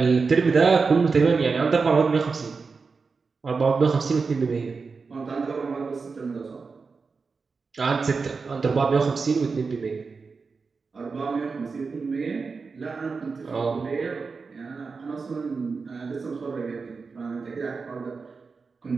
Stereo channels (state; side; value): quieter; left; 4.7 dB